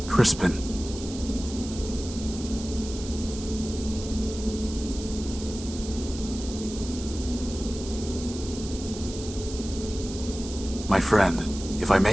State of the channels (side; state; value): right; noise; hiss, 12 dB below the sound